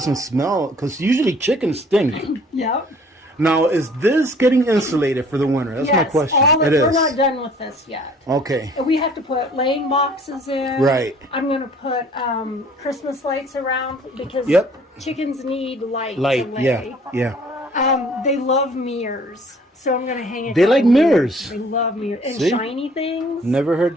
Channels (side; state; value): both; normal; correlation 0.55